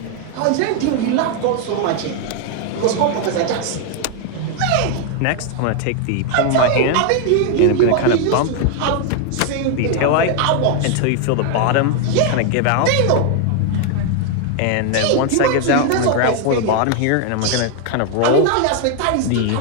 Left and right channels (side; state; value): both; different; correlation 0.00